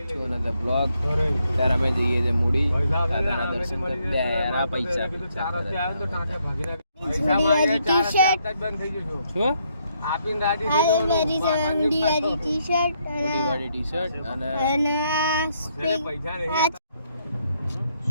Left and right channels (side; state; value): both; inverted; correlation -0.74